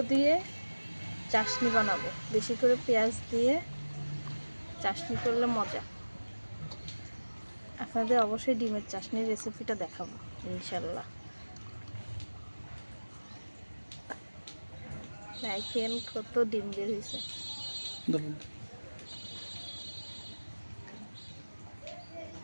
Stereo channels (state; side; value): inverted; both; correlation -1.00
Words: দিয়ে চাশনি বানাবো, বেশি করে পেঁয়াজ দিয়ে চাশনি করলে মজা। আপনাদের অবশ্যই ডিমের চাশনির রেসিপিটা দেখাবো ইনশাল্লাহ। দেখেন কত ডিম বের হয়েছে।